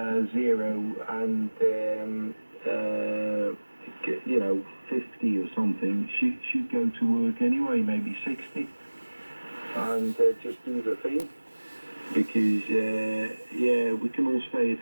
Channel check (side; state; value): both; inverted; correlation -1.00